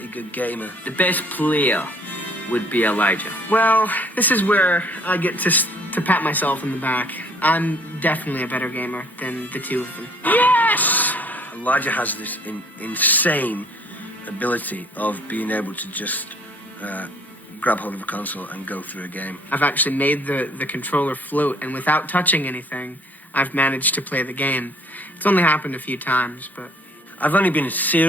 good gamer. The best player would be Elijah. Well, this is where I get to pat myself in the back. I'm definitely a better gamer than the two of them. Yes! Elijah has this insane ability of being able to just grab hold of a console and go through a game. I've actually made the controller float, and without touching anything, I've managed to play the game. It's only happened a few times, but... I've only been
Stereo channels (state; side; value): normal; both; correlation 0.58